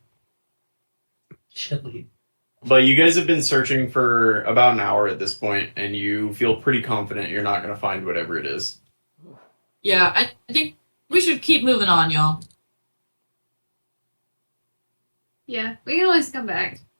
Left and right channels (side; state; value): both; inverted; correlation -1.00